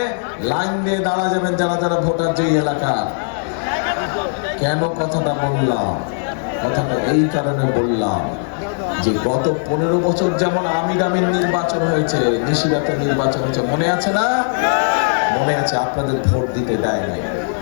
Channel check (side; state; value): right; silent; digital silence